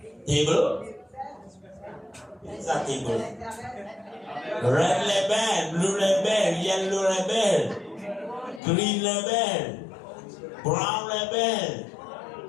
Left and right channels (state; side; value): drops out; right; at 8.6 s